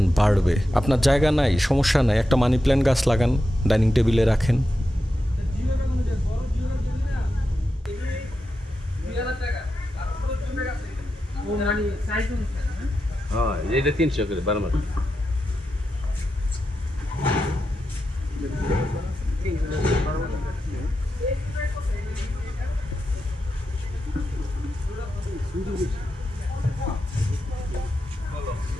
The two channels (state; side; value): normal; both; correlation 0.89